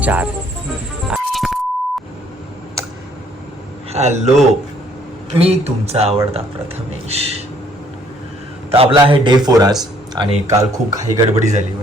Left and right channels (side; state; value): both; normal; correlation 0.63